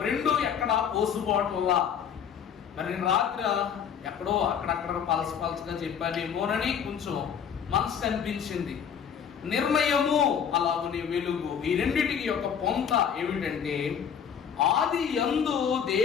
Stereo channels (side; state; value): right; quieter; 7.9 dB